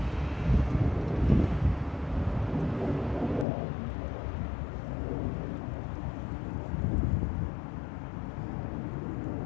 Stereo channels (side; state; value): right; drops out; at 3.5 s